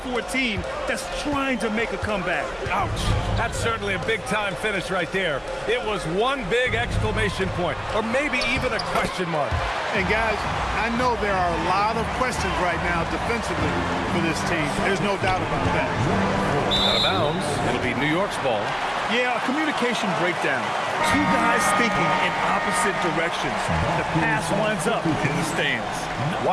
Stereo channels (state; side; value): identical; both; correlation 1.00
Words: a team that's trying to make a comeback. Ouch. That's certainly a big-time finish right there. It was one big exclamation point, or maybe even a question mark. And guys, I know there are a lot of questions right now defensively for this team. There's no doubt about that. Out of bounds. It'll be New York's ball. Yeah, a communication breakdown. 2 guys thinking in opposite directions. The pass winds up in the stands.